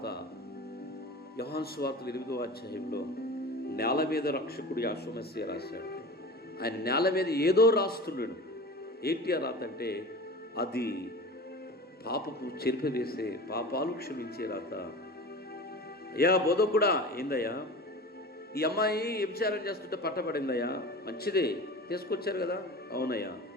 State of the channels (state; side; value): normal; both; correlation 0.34